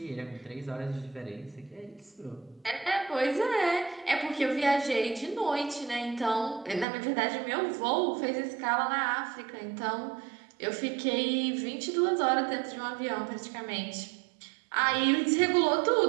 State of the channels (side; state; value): left; drops out; at 6.9 s